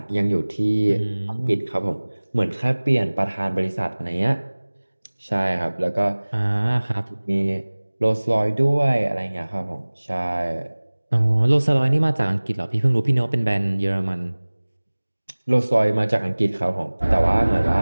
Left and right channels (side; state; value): both; inverted; correlation -1.00